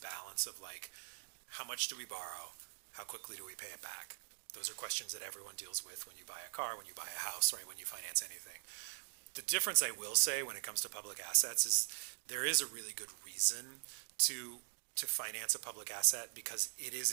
of like, how much do we borrow? How quickly do we pay it back? Those are questions that everyone deals with when you buy a car, when you buy a house, right, when you finance anything. The difference I will say when it comes to public assets is there is a really good reason to finance a public asset, because it is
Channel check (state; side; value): silent; left; digital silence